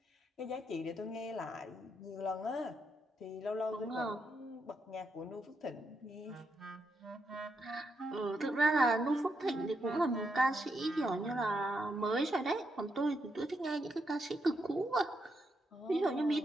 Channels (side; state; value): both; normal; correlation 0.81